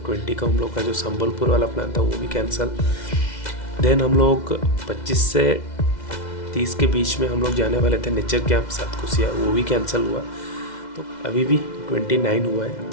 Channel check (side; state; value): right; late; 2.0 ms